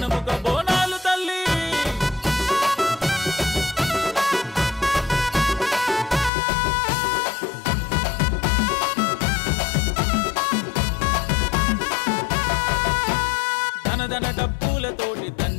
బోనాలు తల్లి ధనధన డప్పులతోటి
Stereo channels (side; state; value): right; drops out; at 6.3 s